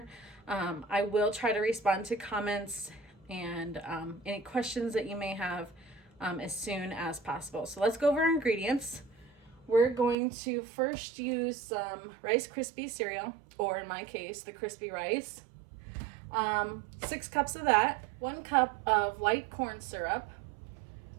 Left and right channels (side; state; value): left; drops out; at 10.2 s